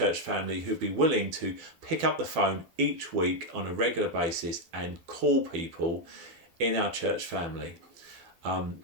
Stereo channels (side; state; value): left; late; 12 ms